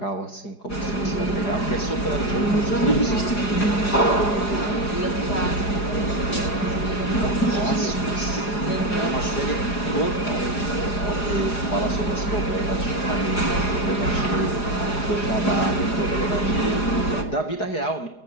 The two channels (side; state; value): right; late; 4.8 ms